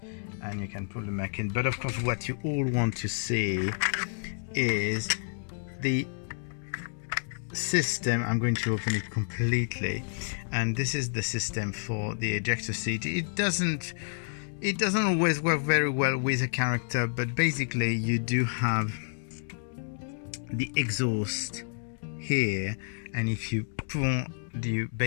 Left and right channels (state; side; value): silent; right; digital silence